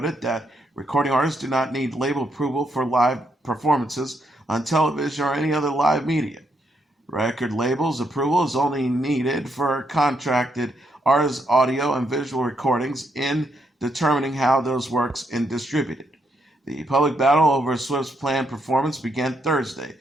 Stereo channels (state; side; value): normal; both; correlation 0.77